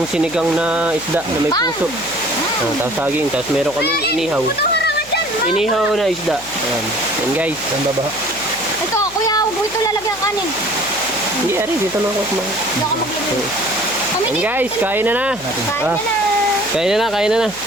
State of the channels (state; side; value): noise; left; hum, 22 dB below the sound